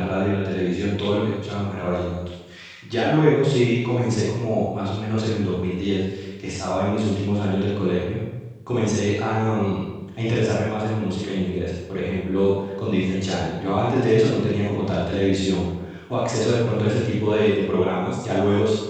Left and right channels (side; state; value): both; identical; correlation 1.00